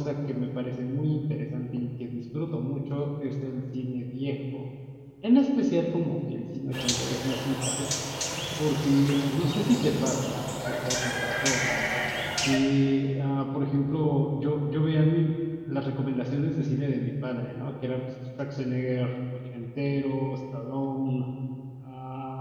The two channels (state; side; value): identical; both; correlation 1.00